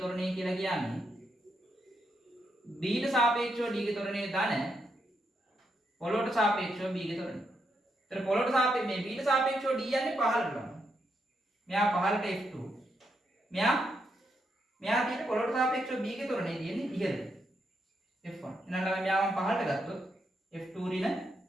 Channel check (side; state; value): both; normal; correlation 0.80